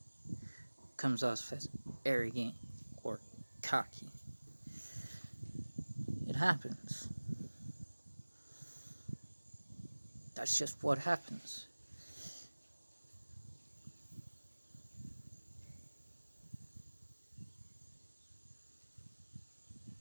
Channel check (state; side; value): inverted; both; correlation -1.00